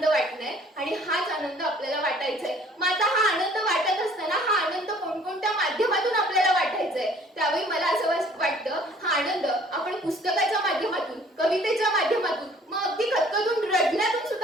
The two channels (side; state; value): both; normal; correlation 0.55